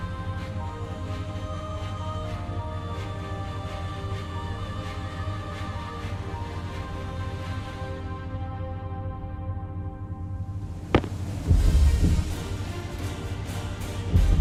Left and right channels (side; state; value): both; identical; correlation 1.00